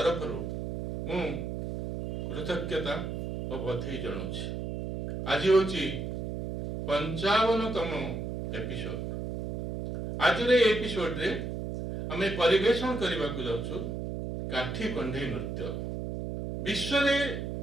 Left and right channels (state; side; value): noise; right; hum, 5 dB below the sound